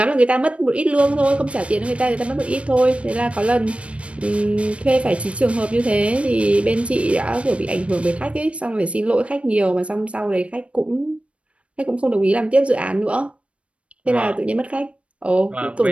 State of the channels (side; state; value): left; late; 0.061 ms